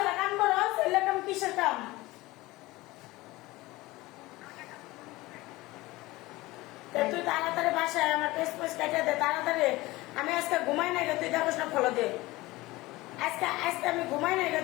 কাম করস? এলে কাম কিসের কাম? তুই তাড়াতাড়ি বাসায় আমার পেস পেস কেটে দে তাড়াতাড়ি। আমি আজকে ঘুমাই নাই তুই দেখোস না, ফলো দে। আজকে আজকে আমি ঘুমাই নাই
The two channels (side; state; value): right; quieter; 19.9 dB